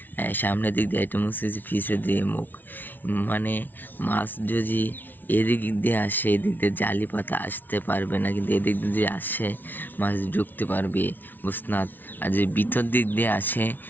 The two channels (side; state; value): right; late; 0.088 ms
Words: একটা মুখ হচ্ছে পিছের দিয়ে মুখ। মানে মাছ যদি এদিক দিয়ে আসে, এদিক দিয়ে জালি পাতা আসতে পারবে না, কিন্তু এদিক দিয়ে আসে মাছ ঢুকতে পারবে মুসনাদ। আর যদি ভিতর দিক দিয়ে আসে